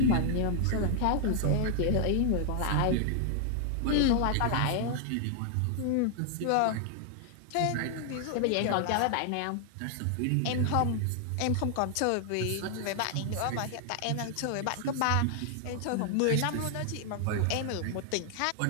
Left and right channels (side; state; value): both; different; correlation 0.00